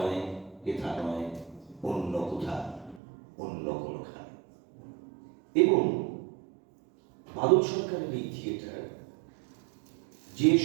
হেথা নয়, অন্য কোথা, অন্য কোনখানে। এবং বাদল সরকারের এই থিয়েটার যে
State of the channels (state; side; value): drops out; left; at 3.0 s